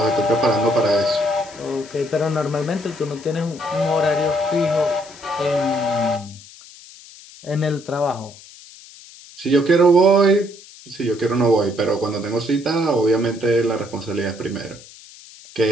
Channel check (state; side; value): noise; left; hiss, 20 dB below the sound